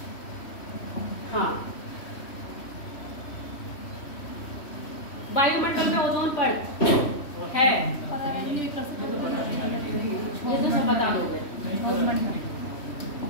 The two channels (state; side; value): late; right; 3.1 ms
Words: हाँ, वायुमंडल में ओजोन परत है, ये तो सब बता दोगे।